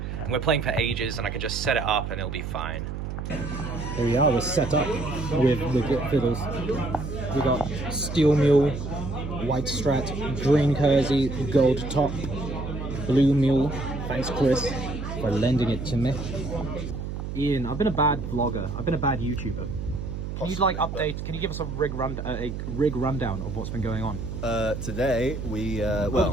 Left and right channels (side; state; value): right; noise; hum, 6 dB below the sound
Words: And we're playing for ages, and I can just set it up and it'll be fine. Here we are, we're set up with the fiddles. We got steel mule, white strat, green kersey, gold top, blue mule. Thanks, Chris, for lending it to me. Ian, I've been a bad vlogger. I've been a bad YouTuber. Can you like update? Can you give us a rig rundown of what's been going on? Today we Over